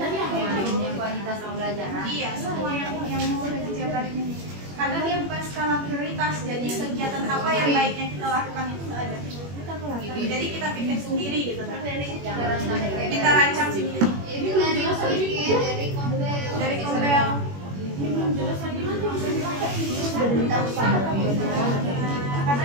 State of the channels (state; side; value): late; left; 21 ms